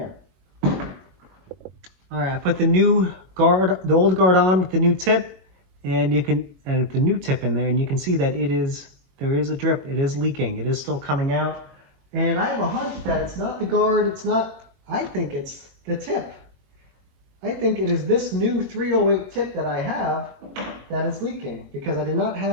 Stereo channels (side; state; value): left; late; 22 ms